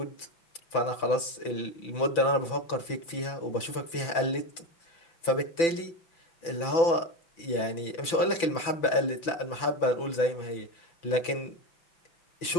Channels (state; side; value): late; right; 5.9 ms